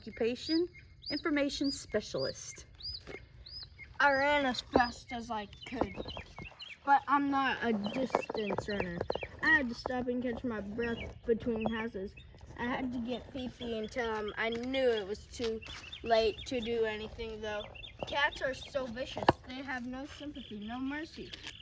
information specialist. I ran as fast as I could, but I'm not a distance runner. I had to stop and catch my breath between houses. I had to get Fifi and tell him I knew it was too late to do anything, though. Cats are so vicious. They have no sympathy, no mercy.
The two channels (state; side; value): identical; both; correlation 1.00